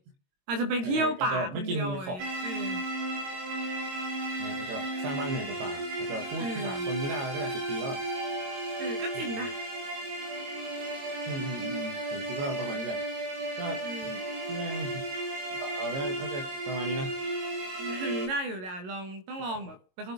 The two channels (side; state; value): left; late; 22 ms